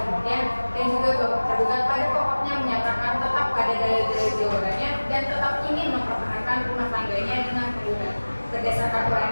dan juga bahwa tergugat pada pokoknya menyatakan tetap pada dalil-dalil jawabannya dan tetap ingin mempertahankan rumah tangganya dengan penggugat. Berdasarkan uraian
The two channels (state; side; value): inverted; both; correlation -1.00